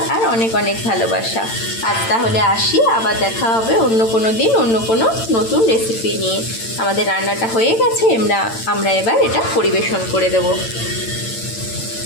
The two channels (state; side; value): late; right; 8.9 ms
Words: আর অনেক ভালোবাসা। আজ তাহলে আসি, আবার দেখা হবে অন্য কোনো দিন অন্য কোনো নতুন রেসিপি নিয়ে। আমাদের রান্নাটা হয়ে গেছে, আমরা এবার এটা পরিবেশন করে দেবো।